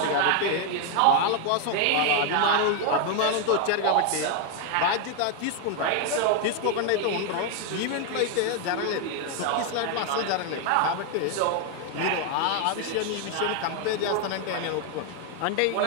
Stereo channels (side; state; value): both; different; correlation 0.01